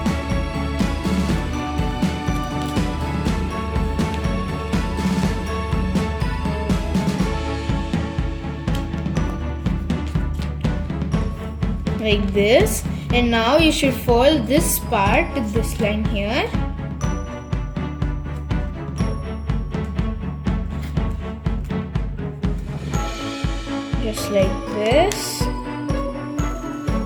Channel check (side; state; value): both; identical; correlation 1.00